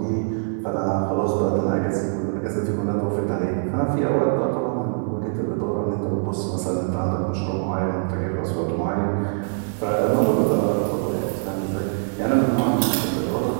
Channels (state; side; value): silent; left; digital silence